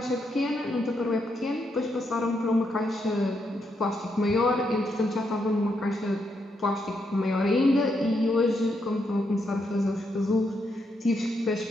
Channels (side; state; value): both; normal; correlation 0.80